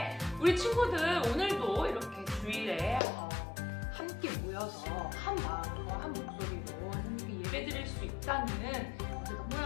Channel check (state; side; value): drops out; right; at 3.0 s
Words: 우리 친구들 오늘도 이렇게 주일에 함께 모여서 한 마음과 한 목소리로 하나님께 예배 드릴 수 있다는